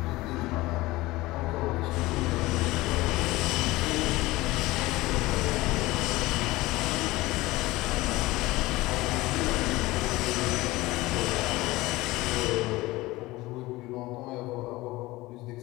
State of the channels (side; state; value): right; quieter; 19.6 dB